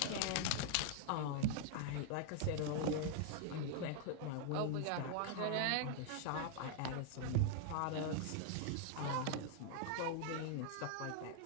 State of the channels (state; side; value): different; both; correlation 0.00